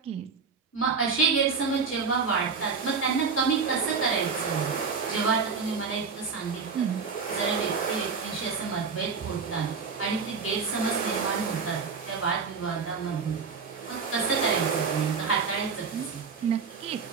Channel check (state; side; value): quieter; left; 5.4 dB